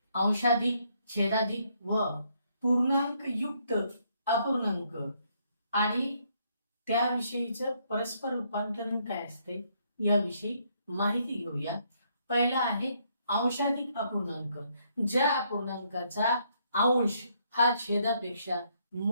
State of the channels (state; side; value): inverted; both; correlation -0.72